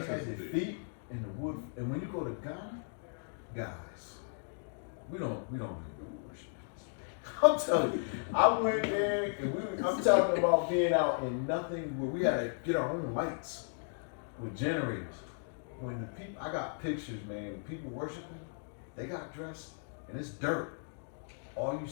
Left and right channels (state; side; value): silent; right; digital silence